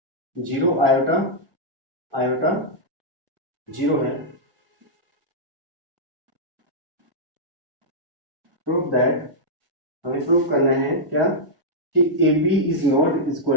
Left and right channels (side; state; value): left; late; 1.6 ms